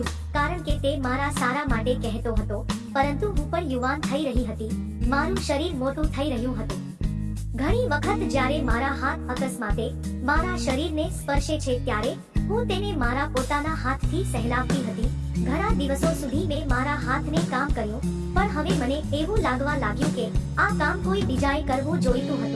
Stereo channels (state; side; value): identical; both; correlation 1.00